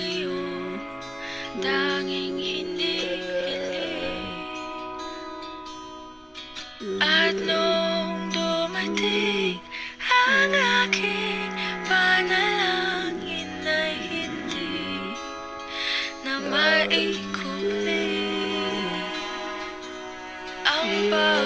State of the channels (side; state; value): both; identical; correlation 1.00